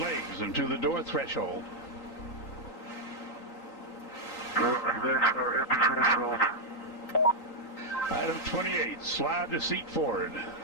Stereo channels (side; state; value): right; late; 3.9 ms